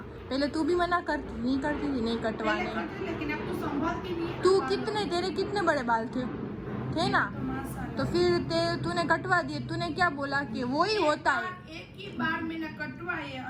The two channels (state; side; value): identical; both; correlation 1.00